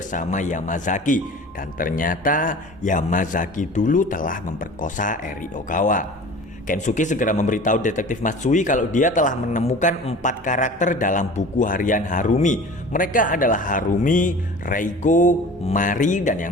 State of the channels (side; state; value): both; normal; correlation 0.41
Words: Yamazaki. Dan ternyata Yamazaki dulu telah memperkosa Eri Ogawa. Kensuke segera memberitahu detektif Matsui kalau dia telah menemukan 4 karakter dalam buku harian Harumi. Mereka adalah Harumi, Reiko, Mari, dan